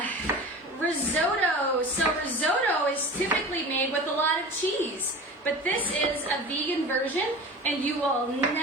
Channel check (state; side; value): normal; both; correlation 0.35